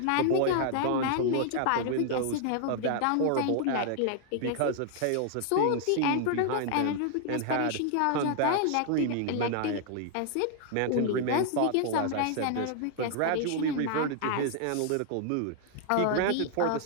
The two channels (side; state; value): both; different; correlation 0.00